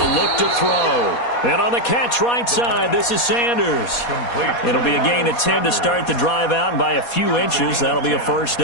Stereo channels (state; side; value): late; right; 4.2 ms